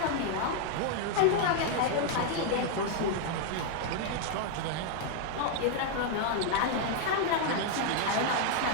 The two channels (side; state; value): both; different; correlation 0.00